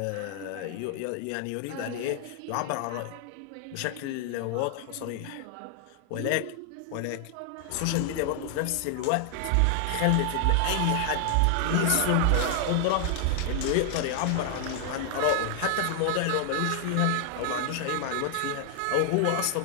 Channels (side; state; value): both; different; correlation 0.00